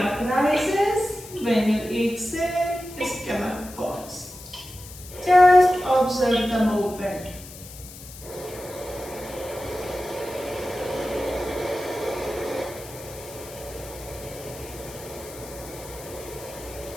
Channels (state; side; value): noise; left; hiss, 16 dB below the sound